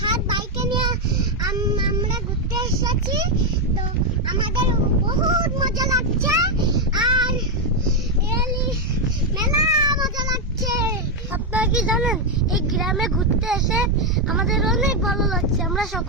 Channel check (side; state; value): both; normal; correlation 0.03